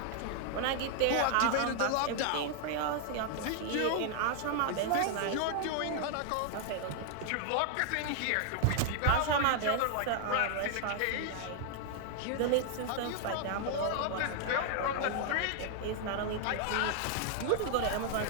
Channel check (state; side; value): different; both; correlation 0.00